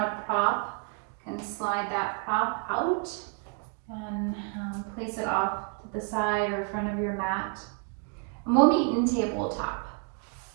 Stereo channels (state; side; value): quieter; left; 35.8 dB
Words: a prop, you can slide that prop out and place it off to the side or front of your mat. And we'll meet in tabletop.